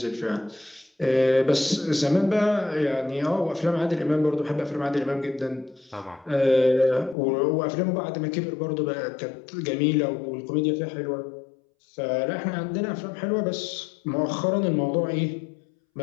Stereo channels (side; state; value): right; drops out; at 7.2 s